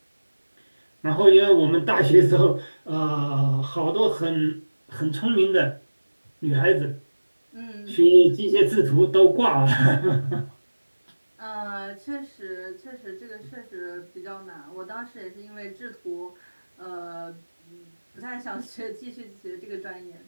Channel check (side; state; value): both; inverted; correlation -1.00